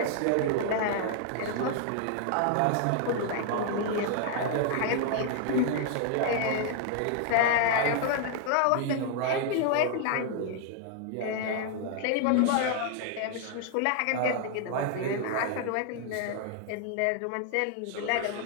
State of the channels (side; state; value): both; different; correlation 0.00